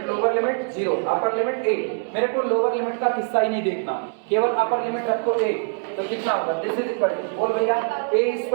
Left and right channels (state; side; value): silent; left; digital silence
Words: lower limit 0, upper limit a। मेरे को लोअर लिमिट का किस्सा ही नहीं देखना, केवल अपर लिमिट रखो a, तो कितना होगा? दिस इज इक्वल टू बोल भैया a